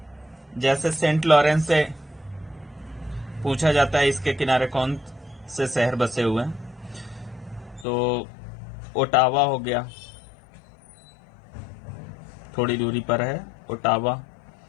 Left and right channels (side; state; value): right; drops out; at 7.9 s